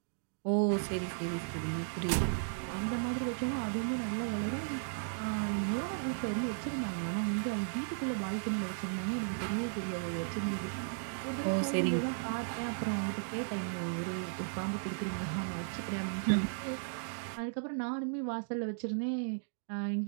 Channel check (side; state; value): left; silent; digital silence